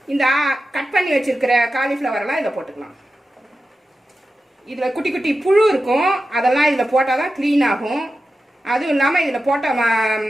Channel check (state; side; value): normal; both; correlation 0.92